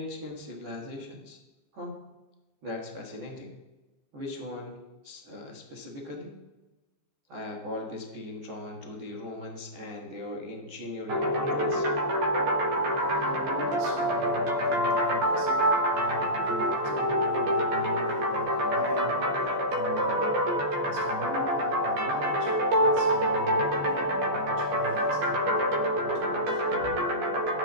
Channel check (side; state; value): left; late; 14 ms